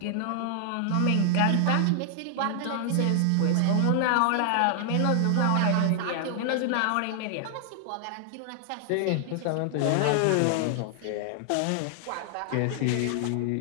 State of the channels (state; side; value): different; both; correlation 0.00